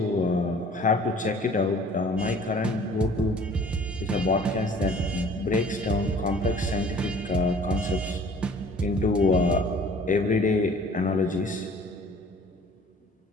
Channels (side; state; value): both; normal; correlation 0.51